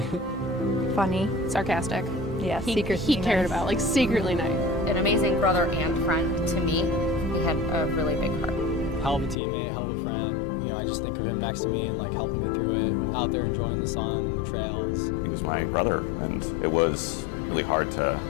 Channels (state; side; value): drops out; right; at 9.3 s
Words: Funny. Sarcastic. Yeah, He cared about, like, secretly nice. An amazing brother and friend to me. He had a really big heart. Hell of a teammate, hell of a friend. You know, I just think of him next to me and like helping me through it, out there enjoying the sun, the trails. He was my brother, and it was really hard to